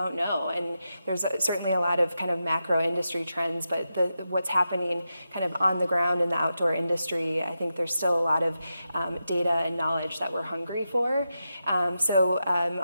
know, and there's certainly a lot of kind of macro industry trends, but what's happening kind of on the ground in the outdoor industry, I think there's still a lot of data and knowledge that we're hungry for. So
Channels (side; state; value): both; inverted; correlation -0.88